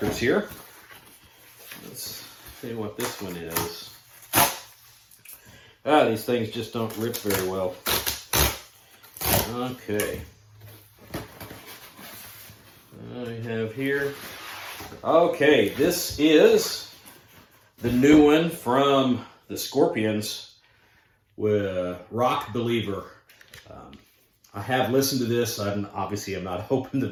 here. Let's see what this one is. These things just don't rip very well. Okay. I have here. Okay, this is the new one from the Scorpions with Rock Believer. I have listened to this. I'm not open to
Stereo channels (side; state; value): both; identical; correlation 1.00